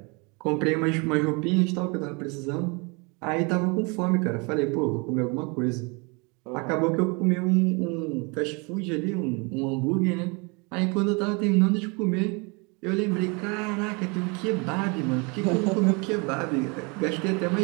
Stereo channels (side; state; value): left; quieter; 30.5 dB